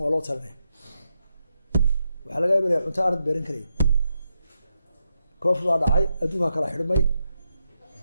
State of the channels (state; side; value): inverted; both; correlation -0.84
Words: waa loo talinaya waxaa laga yaabaa cunto aanad beeran karayn koof baa dhacay adduunka kala xidhmay